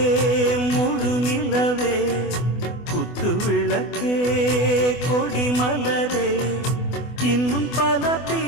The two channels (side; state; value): right; late; 24 ms